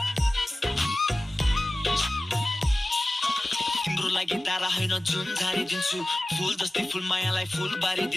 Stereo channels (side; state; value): both; normal; correlation 0.96